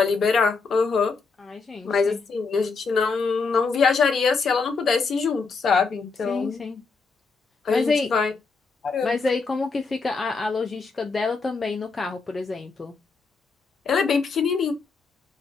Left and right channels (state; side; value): quieter; right; 4.6 dB